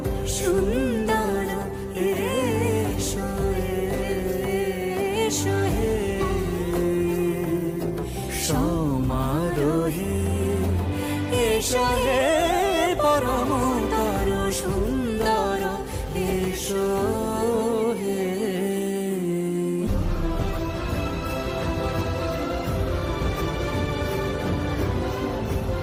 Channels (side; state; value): both; identical; correlation 1.00